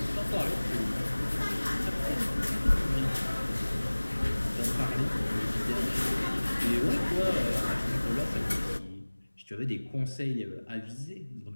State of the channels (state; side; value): inverted; both; correlation -1.00